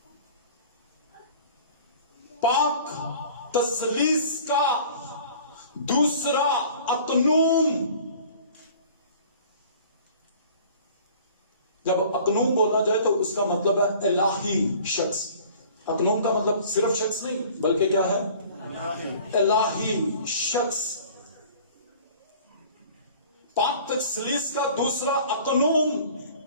پاک تثلیث کا دوسرا اقنوم. جب اقنوم بولا جائے تو اس کا مطلب ہے الہی شخص. اقنوم کا مطلب صرف شخص نہیں بلکہ کیا ہے؟ الہی شخص. پاک تثلیث کا دوسرا اقنوم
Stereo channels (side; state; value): both; inverted; correlation -0.48